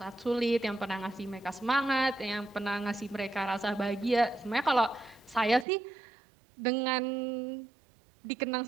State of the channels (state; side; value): drops out; left; at 5.7 s